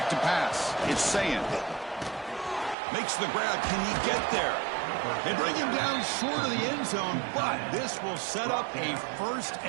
to pass. It's Sayin. Makes the grab. Can he get there? They bring him down short of the end zone, but this will set up a 1st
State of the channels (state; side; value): drops out; left; at 2.8 s